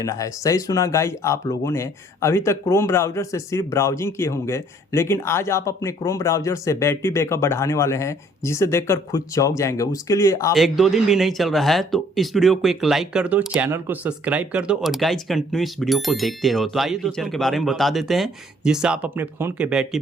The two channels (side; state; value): both; normal; correlation 0.60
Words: है। सही सुना गाइज, आप लोगों ने अभी तक क्रोम ब्राउज़र से सिर्फ ब्राउजिंग किए होंगे, लेकिन आज आप अपने क्रोम ब्राउज़र से बैटरी बैकअप बढ़ाने वाले हैं जिसे देखकर खुद चौंक जाएंगे। उसके लिए आप 1-2 दिन भी नहीं चल रहा है तो इस वीडियो को एक लाइक कर दो, चैनल को सब्सक्राइब कर दो और गाइज कंटिन्यू इस वीडियो को देखते रहो। तो आइए फीचर के बारे में बता देते हैं जिससे आप अपने फ़ोन के बैटरी